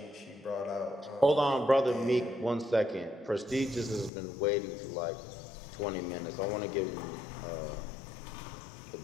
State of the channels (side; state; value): right; drops out; at 4.1 s